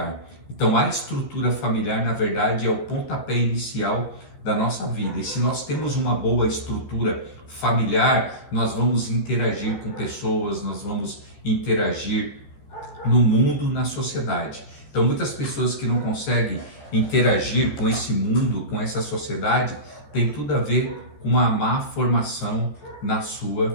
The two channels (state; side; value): late; right; 14 ms